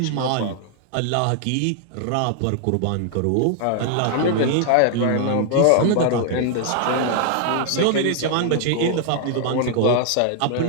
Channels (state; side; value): different; both; correlation 0.00